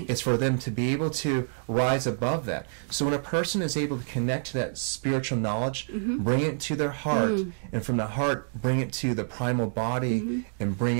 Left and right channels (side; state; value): left; silent; digital silence